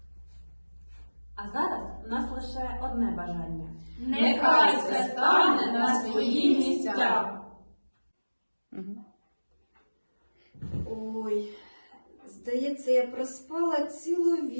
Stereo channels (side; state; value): both; inverted; correlation -1.00